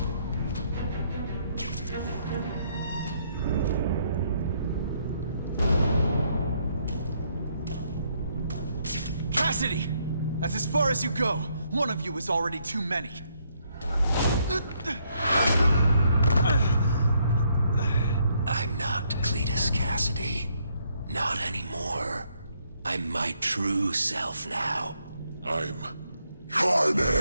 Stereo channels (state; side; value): inverted; both; correlation -0.72